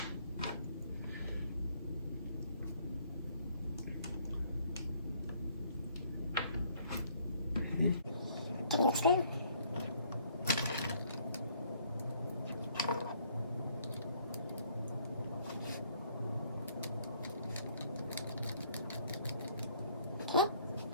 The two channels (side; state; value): both; inverted; correlation -0.63